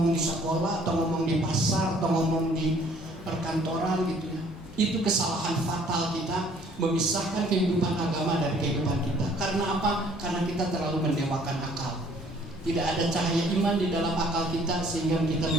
di sekolah, atau ngomong di pasar, atau ngomong di perkantoran gitu ya. Itu kesalahan fatal kita memisahkan kehidupan agama dari kehidupan kita. Karena apa? Karena kita terlalu mendewakan akal. Tidak ada cahaya iman di dalam akal kita sehingga kita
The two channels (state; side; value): normal; both; correlation 0.58